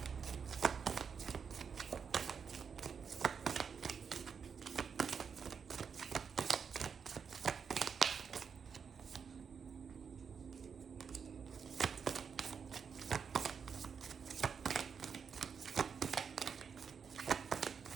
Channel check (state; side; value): quieter; left; 6.4 dB